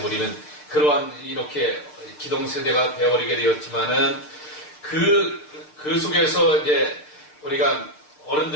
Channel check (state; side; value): late; right; 6.7 ms